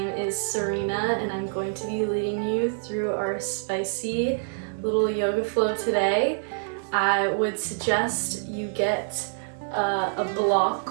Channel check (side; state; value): left; silent; 61 dB below the other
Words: is Cyrena and I'm going to be leading you through our spicy little yoga flow today. I would suggest you get a